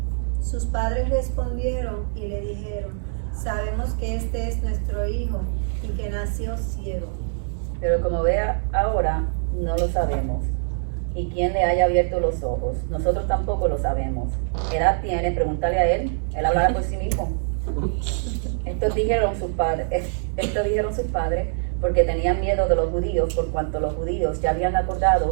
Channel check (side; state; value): left; silent; digital silence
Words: Sus padres respondieron y le dijeron: sabemos que este es nuestro hijo y que nació ciego. Pero como ve ahora, no lo sabemos. ¿Y quién le haya abierto los ojos? Nosotros tampoco lo sabemos. ¿Qué edad tiene? Pregúntale a él. Él hablará por sí mismo. Estos dijeron sus padres porque tenían miedo de los judíos, por cuanto los judíos ya habían